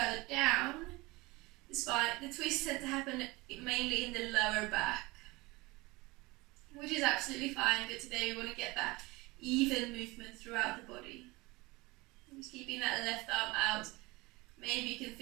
down, the twists tend to happen mainly in the lower back, which is absolutely fine, but today we want to get that even movement throughout the body. Just keeping that left arm out. Maybe you can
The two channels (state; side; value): quieter; left; 22.9 dB